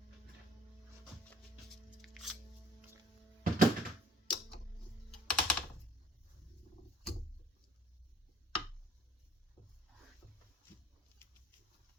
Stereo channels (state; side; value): normal; both; correlation 0.56